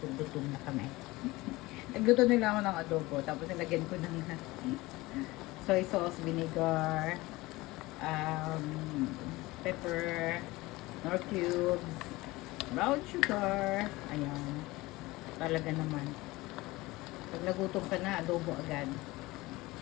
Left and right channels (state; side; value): quieter; right; 20.6 dB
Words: kung gutom na kami. Nagluto nila ako ng adobo. Tapos nilagyan ko ng soy sauce, vinegar, pepper, nor cubes, brown sugar. Ayan. Talaga naman. Pag nagutom ka na, adobo agad.